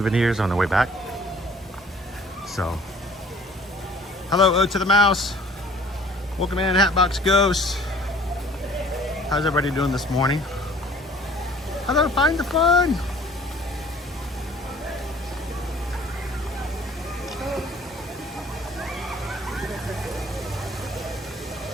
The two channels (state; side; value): normal; both; correlation 0.53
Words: on the way back. So, hello, Ode to the Mouse. Welcome in, Hatbox Ghost. How's everybody doing this morning? Hello, Find the Fun.